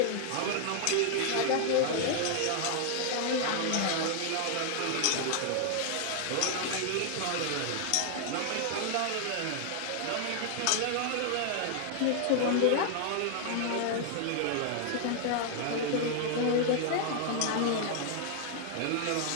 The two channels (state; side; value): different; both; correlation 0.00